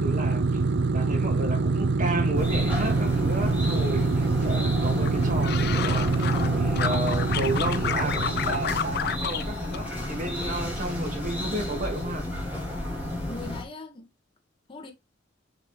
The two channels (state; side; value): normal; both; correlation 0.56